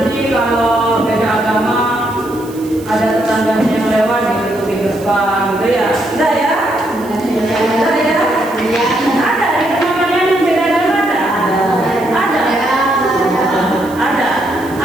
kalau beda agama ada tetangganya yang lewat gitu di depan gitu ya. Enggak ya? Enggak ya? Ada di tempat kalian yang beda agama ada? Ada. Ada.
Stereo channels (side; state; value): right; noise; hiss, 21 dB below the sound